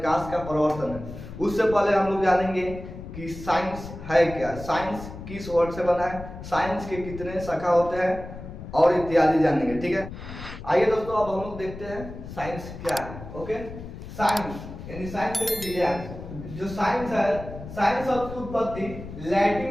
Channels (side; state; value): left; noise; rumble, 12 dB below the sound